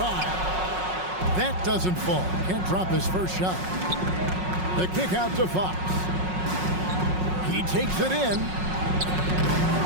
That doesn't fall. Can't drop his first shot. The kick out to Fox. He takes it in.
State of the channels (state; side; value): late; left; 5.5 ms